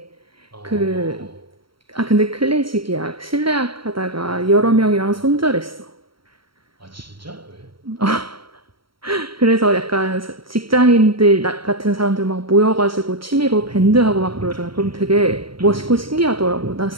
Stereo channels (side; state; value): left; late; 0.74 ms